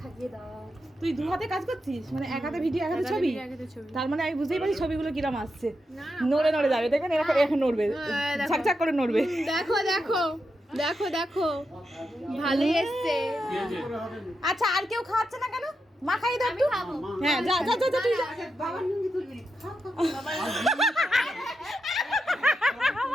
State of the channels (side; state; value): both; normal; correlation 0.86